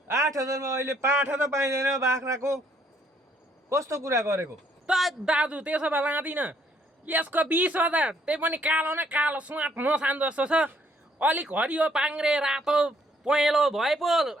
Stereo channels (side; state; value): both; normal; correlation 0.67